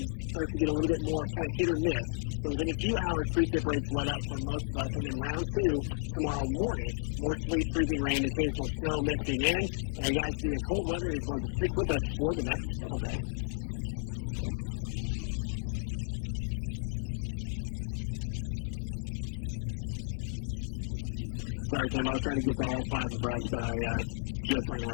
starts to get a little bit more kind of hit or miss. So within a few hours, precip rates let up for most of us. And then round two tomorrow morning, more sleet, freezing rain, occasional snow mixing in. And guys, the cold weather is going to stick with us for the next several days. Sorry, Tim, I was trying to get to all five of us, but I just ran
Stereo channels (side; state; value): right; silent; digital silence